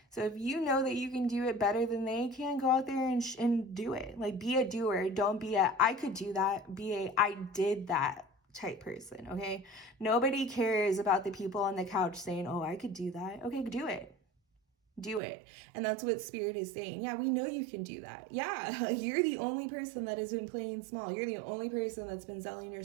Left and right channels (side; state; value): left; drops out; at 15.2 s